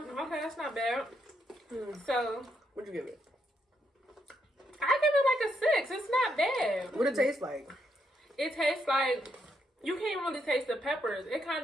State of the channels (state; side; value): normal; both; correlation 0.78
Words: Okay, that's not bad. So, What'd you give it? I give it like a 6. It's not bad. What it taste like? It tastes like, you can't really taste the peppers. It